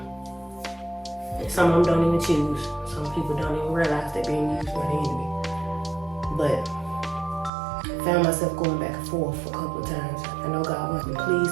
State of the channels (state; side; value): drops out; left; at 7.5 s